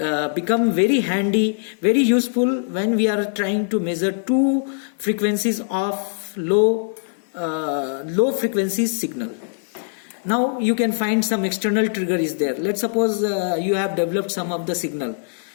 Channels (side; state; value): right; silent; digital silence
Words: become very handy, very useful when we are trying to measure two frequencies of low frequency signal. Now you can find some external trigger is there. Let's suppose you have developed some of the signal,